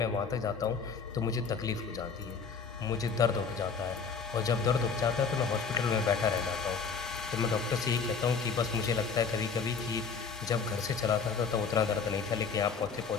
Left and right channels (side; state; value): right; quieter; 5.5 dB